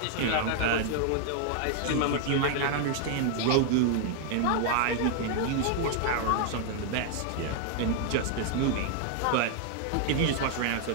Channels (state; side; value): different; both; correlation 0.00